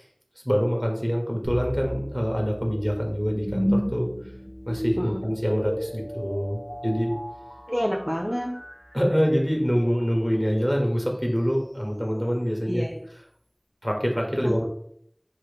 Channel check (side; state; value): both; identical; correlation 1.00